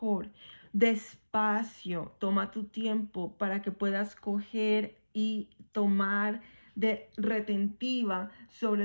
Despacio, toma tu tiempo para que puedas coger y tomar de retentiva sobre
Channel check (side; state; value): both; inverted; correlation -1.00